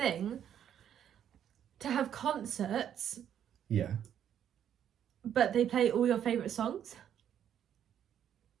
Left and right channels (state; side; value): quieter; left; 9.6 dB